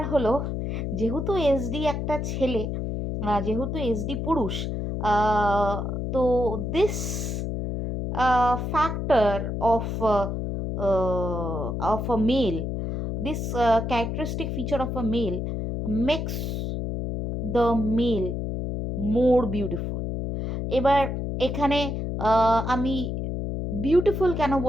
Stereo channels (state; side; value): noise; left; hum, 3 dB below the sound